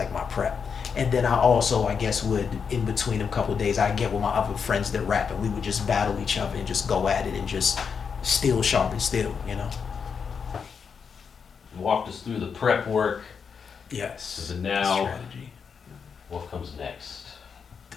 my prep. And then I also, I guess, would, in between a couple of days, I'd get with my other friends that rap, and we would just battle each other and just go at it and just steel sharpen steel, You walked us through the prep work. Yes. So now, strategy. What comes next?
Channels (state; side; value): quieter; right; 6.2 dB